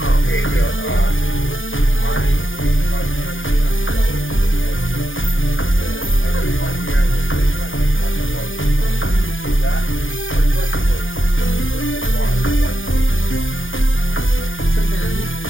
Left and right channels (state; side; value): late; right; 0.58 ms